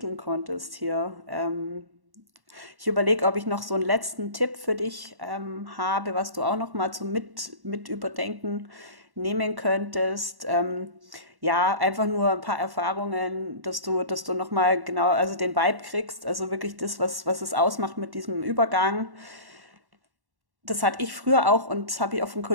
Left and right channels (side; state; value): left; late; 1.1 ms